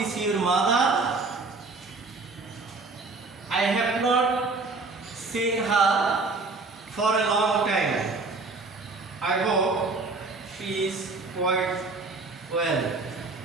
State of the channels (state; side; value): quieter; left; 3.7 dB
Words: your mother? I have not seen her for a long time. I hope she is quite well.